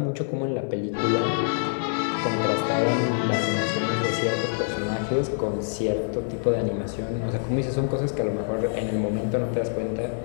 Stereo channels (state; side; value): silent; right; digital silence